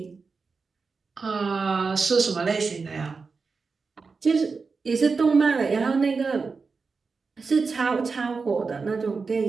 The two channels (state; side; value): quieter; left; 4.7 dB